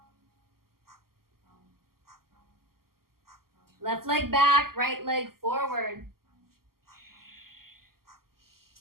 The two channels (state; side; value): late; left; 0.92 ms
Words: Left leg back, right leg forward.